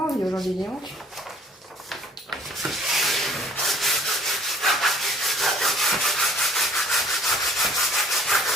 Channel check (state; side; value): normal; both; correlation 0.55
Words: envie aujourd'hui, les hanches.